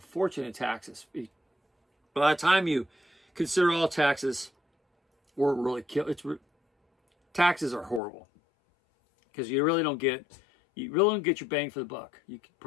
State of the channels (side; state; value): right; drops out; at 8.0 s